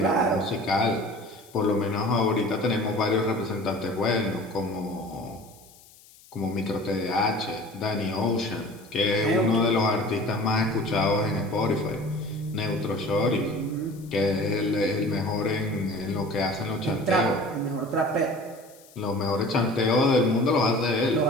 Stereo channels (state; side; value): noise; left; hiss, 25 dB below the sound